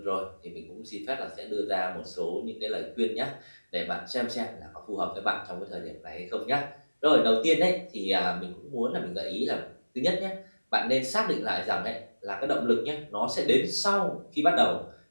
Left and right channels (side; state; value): both; inverted; correlation -1.00